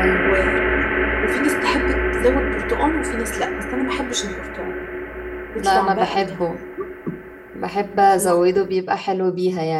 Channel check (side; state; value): both; identical; correlation 1.00